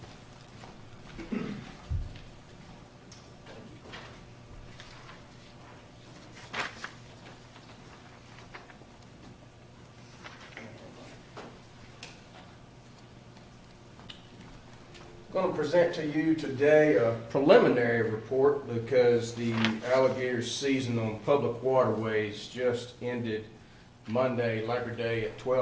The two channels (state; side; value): identical; both; correlation 1.00